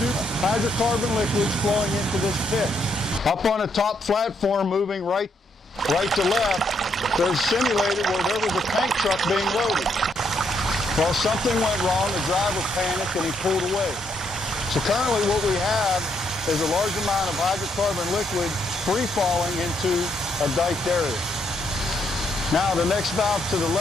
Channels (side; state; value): both; normal; correlation 0.75